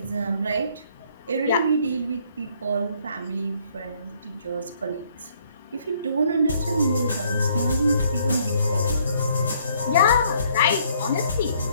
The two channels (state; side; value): inverted; both; correlation -0.65